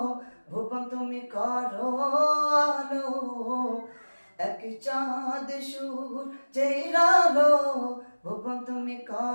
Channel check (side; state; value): both; inverted; correlation -1.00